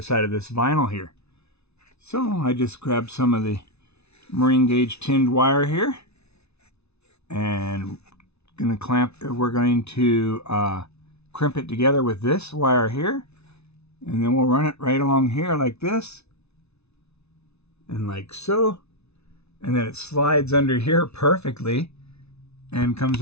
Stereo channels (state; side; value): late; right; 0.80 ms